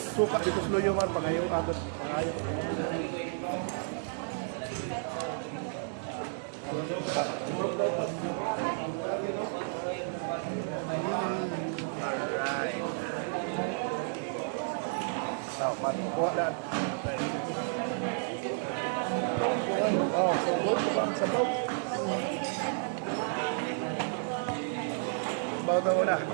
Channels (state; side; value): silent; left; digital silence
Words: dito sa luyo man, pangayo agad. Pangayo. Alright. Now, matukuha na. Oh, so good sa bang sabaw. Sabaw na muna.